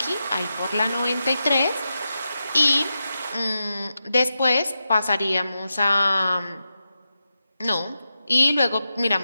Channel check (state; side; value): inverted; both; correlation -0.89